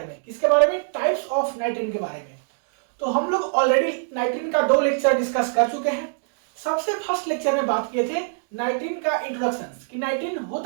में। किसके बारे में? टाइप्स ऑफ नाइट्रीन के बारे में। तो हम लोग ऑलरेडी नाइट्रीन का 2 लेक्चर डिस्कस कर चुके हैं। सबसे फर्स्ट लेक्चर में बात किए थे नाइट्रीन का इंट्रोडक्शन कि नाइट्रीन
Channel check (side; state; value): left; silent; digital silence